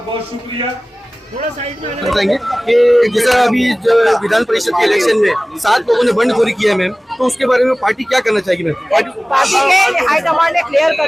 बहुत शुक्रिया। बताएंगे कि जैसा अभी जो विधान परिषद के इलेक्शन में 7 लोगों ने बंडखोरी किया है मैम, तो उसके बारे में पार्टी क्या करना चाहेगी मैम? पार्टी के हाईकमान ने क्लियर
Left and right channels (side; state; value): both; normal; correlation 0.98